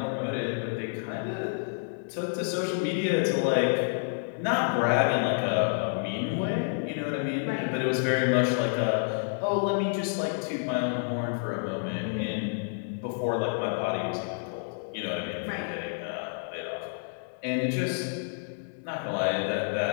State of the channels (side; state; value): right; silent; 58 dB below the other